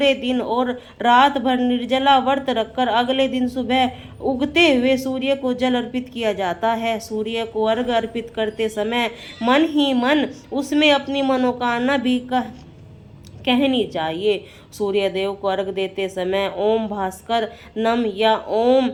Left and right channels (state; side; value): identical; both; correlation 1.00